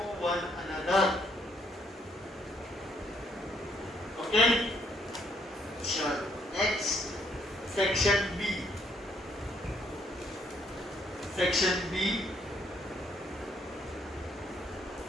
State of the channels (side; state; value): both; normal; correlation 0.70